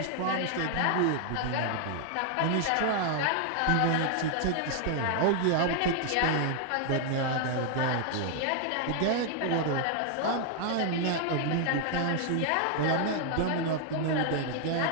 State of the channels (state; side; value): different; both; correlation 0.00